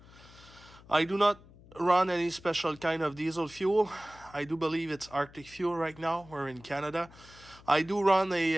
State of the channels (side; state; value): left; noise; hum, 22 dB below the sound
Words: I do not run any special kind of diesel fuel. I do believe it's Arctic fuel right now. We're in Canada. I do run